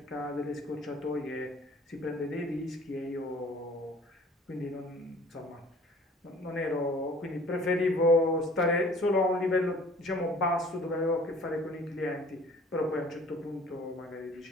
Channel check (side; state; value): both; normal; correlation 0.51